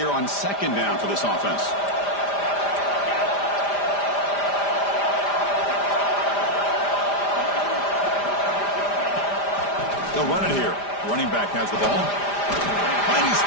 on second down for this offense? They'll run it here. Running back has the ball. Finding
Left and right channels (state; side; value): late; right; 5.0 ms